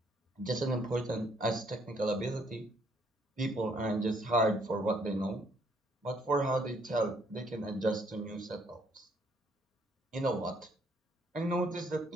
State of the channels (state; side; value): normal; both; correlation 0.67